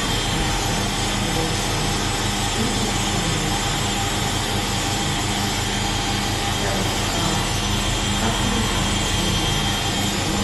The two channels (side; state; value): both; identical; correlation 1.00